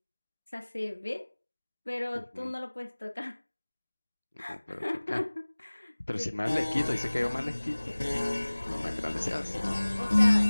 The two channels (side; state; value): both; inverted; correlation -1.00